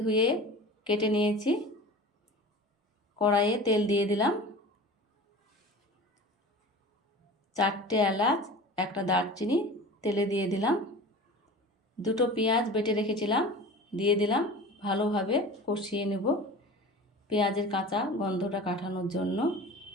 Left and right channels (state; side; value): normal; both; correlation 0.37